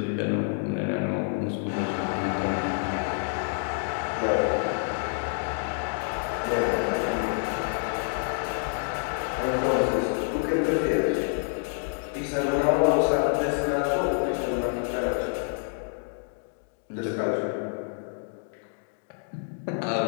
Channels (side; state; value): right; silent; 60 dB below the other